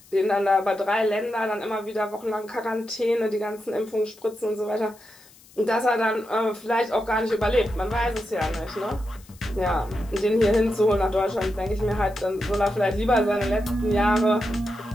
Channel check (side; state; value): left; noise; hiss, 25 dB below the sound